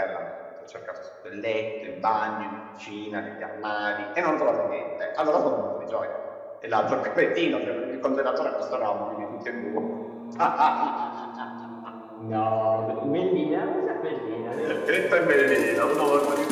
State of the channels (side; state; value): both; identical; correlation 1.00